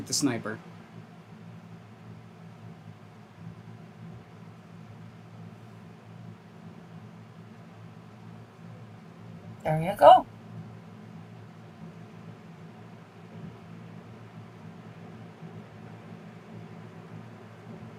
the sniper. There you go.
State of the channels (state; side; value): identical; both; correlation 1.00